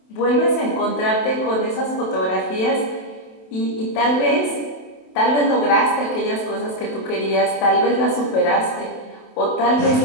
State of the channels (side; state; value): right; late; 27 ms